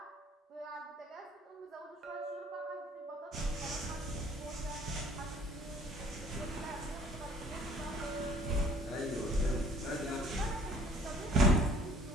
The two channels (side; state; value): both; normal; correlation 0.54